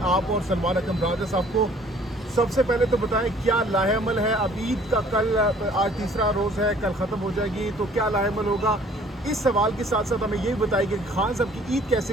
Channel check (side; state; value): both; normal; correlation 0.56